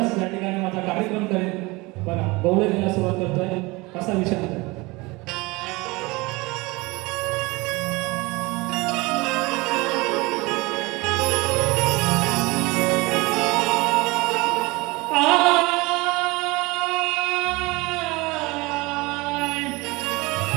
या ठिकाणी माझा कार्यक्रम करेल. बघा गौरीला सुरुवात करतोय, कसा विषय आहे.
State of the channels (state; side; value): quieter; left; 23.7 dB